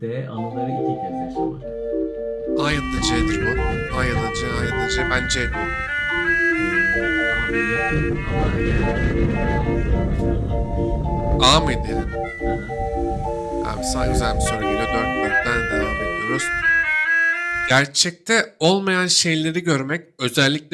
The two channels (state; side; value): identical; both; correlation 1.00